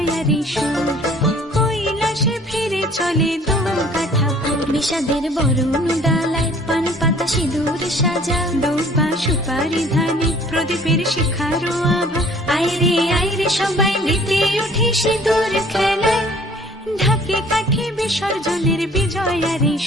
সুর, কৈলাসে ফিরে চলে দুর্গা ঠাকুর। বিষাদের বরণ ডালায় পান পাতা সিঁদুর সাজা, দৌপা সুপারি ধানে প্রদীপের শিখারো আভা। আইরে সবাই মেতে উঠে সিঁদুর খেলায়, ঢাকে কাঠে বিসর্জনের বিজয়ারি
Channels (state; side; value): normal; both; correlation 0.54